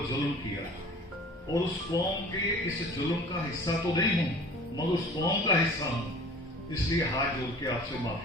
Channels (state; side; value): normal; both; correlation 0.45